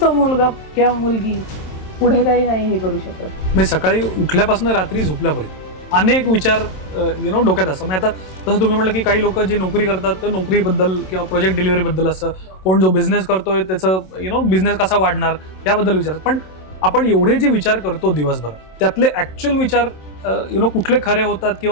तो मुलगा किंवा मुलगी पुढे काही नाही हे करू शकत. म्हणजे सकाळी उठल्यापासून रात्री झोपल्यापर्यंत अनेक विचार डोक्यात असतात. म्हणजे आता तसं तुम्ही म्हटलं की काही लोक जे नोकरी करतात तर नोकरीबद्दल किंवा प्रोजेक्ट डिलिव्हरीबदल असं, कोण जो बिझनेस करतोय त्याचं बिझनेस कसा वाढणार याबद्दल विचारतात. पण आपण एवढे जे विचार करतो दिवसभर, त्यातले ऍक्च्युअल विचार कुठले खरे होतात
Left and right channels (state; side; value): late; right; 27 ms